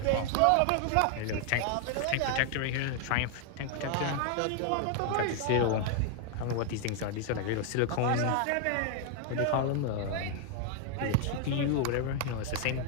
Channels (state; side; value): different; both; correlation 0.00